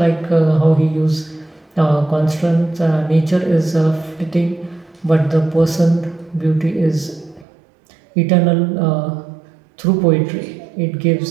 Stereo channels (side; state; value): left; drops out; at 7.5 s